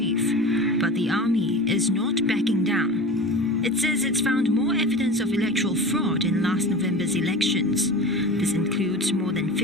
But the army is not backing down. It says it's found more evidence of electoral fraud in last November's elections. This includes more than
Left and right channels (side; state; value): both; normal; correlation 0.32